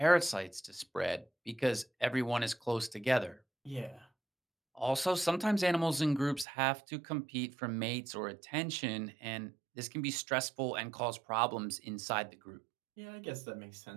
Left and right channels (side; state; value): left; drops out; at 6.5 s